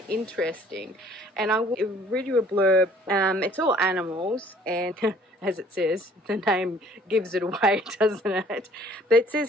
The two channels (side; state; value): both; normal; correlation 0.57